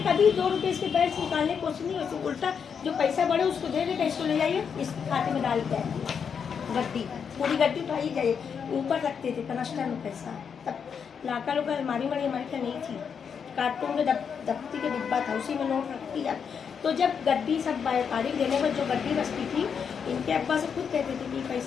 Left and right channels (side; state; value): right; quieter; 6.8 dB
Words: कभी 2 रुपए इसके बैंक से निकालने की कोशिश नहीं, वैसे उल्टा जो पैसा बढ़े उसको दे देते, इसको ले जाइए इस खाते में डाल के आइए, गड्डी पूरी गड्डी उठाई जाइए, ऊपर रखते थे कनस्टर में पैसा, तब लाका लोग अलमारी वाली हमारे क्या नहीं थी, कार्टून में दफ्ती के डिब्बा था, उसी में नोट रखती जाए। तो जब गड्डी सब व्यापारी देने पर जो गड्डी बचती थी, इनके अब्बा से खुद कहते थे कि